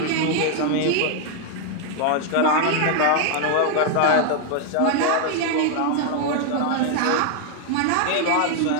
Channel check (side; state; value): both; different; correlation 0.00